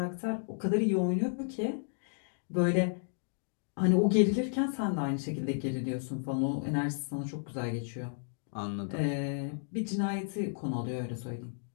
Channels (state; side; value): silent; right; digital silence